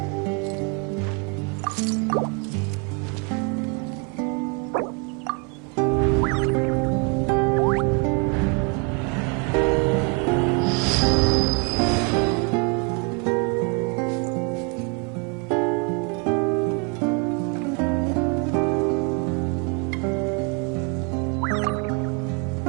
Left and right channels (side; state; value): left; quieter; 34.9 dB